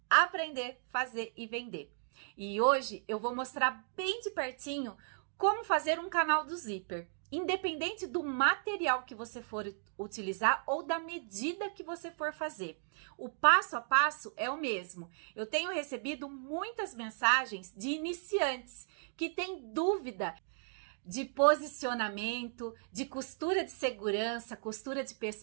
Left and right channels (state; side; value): silent; left; digital silence